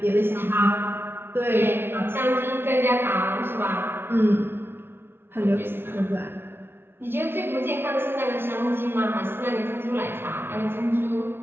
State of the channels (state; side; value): late; left; 0.11 ms